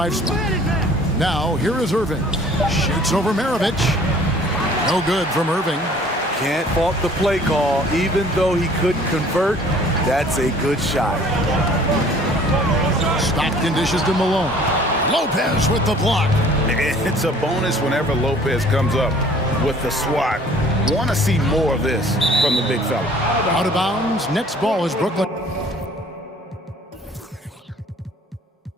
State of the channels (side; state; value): both; normal; correlation 0.53